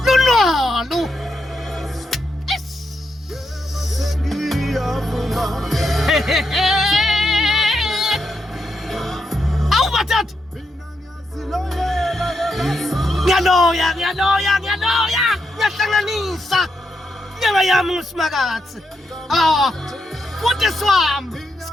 lunalo. Awu madoda, ngiyaloya, ngiyahlanganisa nyanga yami nguSimakatsi. Futhi swami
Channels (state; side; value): normal; both; correlation 0.82